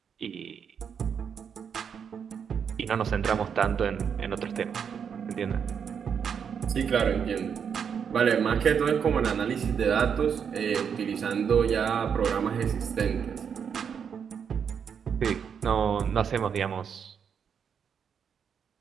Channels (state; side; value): quieter; left; 7.2 dB